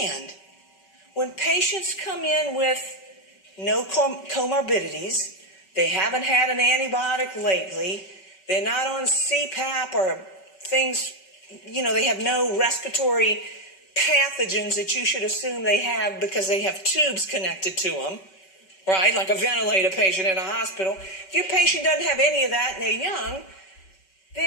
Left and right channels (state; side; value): late; right; 5.2 ms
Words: when patients come in with no comorbidities, they haven't had an antibiotic lately, they're not on CPAP or things, you know, they have no respiratory pathogens that you should assume they have because they have tubes connected to them, right? Like a ventilator patient in a hospital. If your patient doesn't have any of that and they're young,